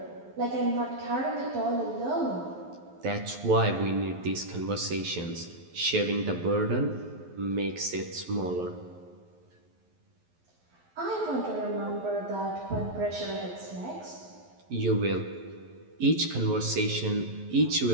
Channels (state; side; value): late; left; 11 ms